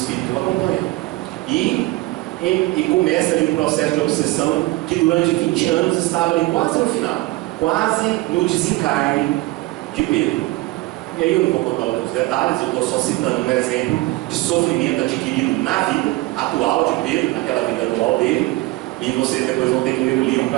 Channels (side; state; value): left; quieter; 19.7 dB